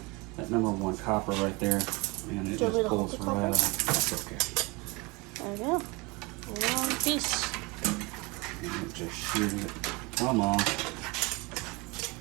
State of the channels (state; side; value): quieter; left; 26.2 dB